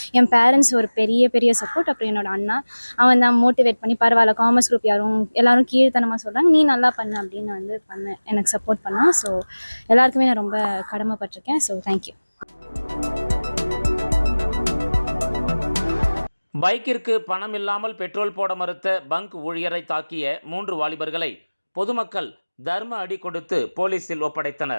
என் பேரண்ட்ஸ் ஒரு பெரிய சப்போர்ட். அப்புறம் என்னோட அண்ணா, அவன் தான் மோட்டிவேட் பண்ணி, பரவாயில்ல காமர்ஸ் குரூப் எல்லாரும் கீழ்த்தனமாக சொல்கிறாங்க, நீ நல்லா பண்ணு அப்படின்னு வந்து எனக்கு சப்போர்ட் பண்ணான். ஸோ எல்லாருக்குமே நான் ரொம்ப கடமைப்பட்டிருக்கேன். So thank you. பைக்கிற்கு பணம் இல்லாமல் பெட்ரோல் போட மறுத்த பங்க் ஊழியரை தாக்கிய 3 வாலிபர்களை பொதுமக்கள் தர்ம அடி கொடுத்து போலீசில்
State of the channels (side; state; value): both; inverted; correlation -1.00